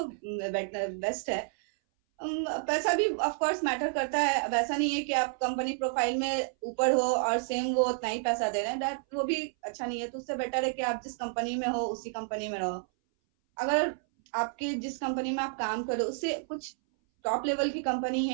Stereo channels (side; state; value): left; silent; 58 dB below the other